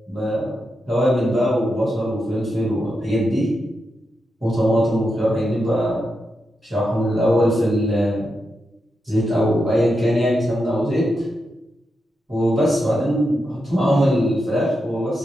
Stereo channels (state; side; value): normal; both; correlation 0.86